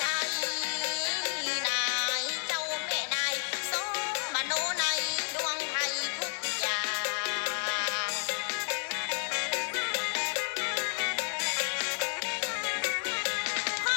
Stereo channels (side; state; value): right; silent; 57 dB below the other